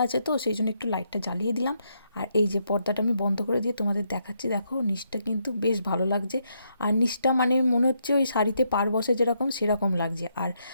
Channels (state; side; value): inverted; both; correlation -0.77